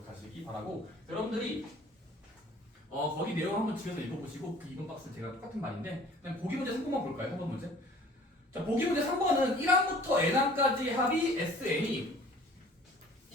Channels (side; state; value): both; normal; correlation 0.50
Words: 바라고. 여러분들이 거기 내용 한번 집에서 읽어보시고 그 2번 박스 제가 똑같은 말인데 그냥 보기 문제 3번만 볼까요? 3번 문제. 자, 보기 문제 3번은 1항부터 n항까지 합이 SN이